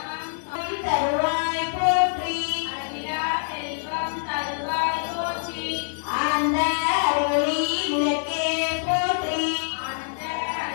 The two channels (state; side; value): silent; right; digital silence